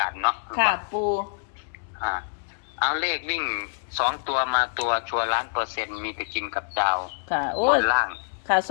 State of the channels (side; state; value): right; silent; 61 dB below the other